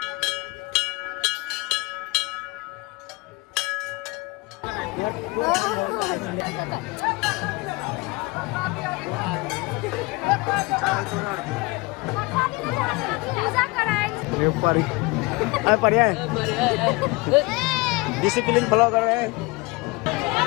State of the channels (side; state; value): right; quieter; 24.8 dB